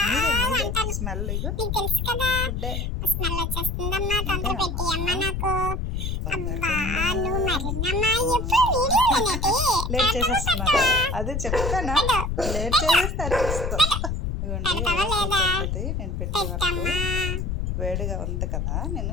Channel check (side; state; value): left; noise; rumble, 1 dB below the sound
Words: మీరే మీరే స్మెల్ ఫుడ్డే లేట్ చేసేస్తున్నాను. అదే చెప్తానా, లేట్ చేసేస్తే అరిపిస్తాం. ఇవ్వండి నేను పెట్టే వరకు వేడిగా ఉంది కదా, నేను